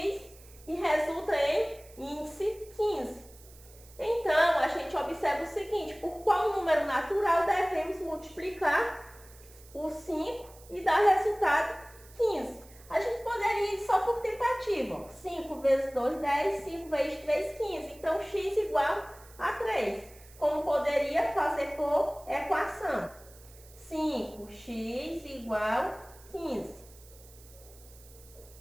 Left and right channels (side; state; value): right; noise; hiss, 23 dB below the sound